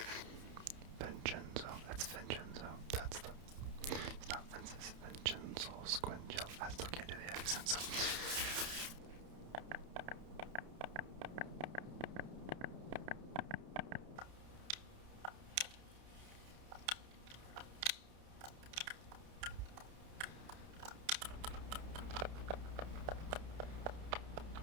Vincenzo, that's Vincenzo. That's the. It's not Vincenzo, Vincenzo Squingelli. I still can't do the accent, so.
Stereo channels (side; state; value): left; late; 31 ms